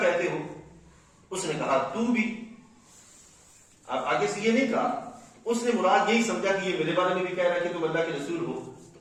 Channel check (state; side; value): identical; both; correlation 1.00